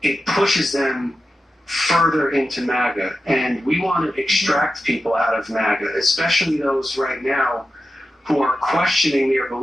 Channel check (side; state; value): both; normal; correlation 0.91